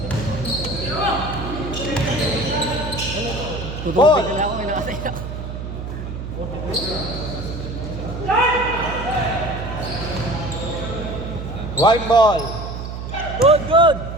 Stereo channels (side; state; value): right; noise; hum, 7 dB below the sound